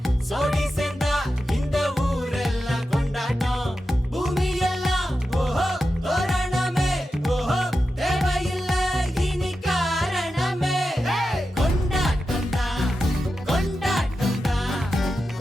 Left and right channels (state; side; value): normal; both; correlation 0.91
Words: சோடி சேர்ந்தா இந்த ஊரெல்லாம் கொண்டாட்டம். பூமி எல்லாம் ஓஹோ தோரணமே, ஓஹோ தேவையில்லை இனி காரணமே. கொண்டாட்டம் தான் கொண்டாட்டம் தான்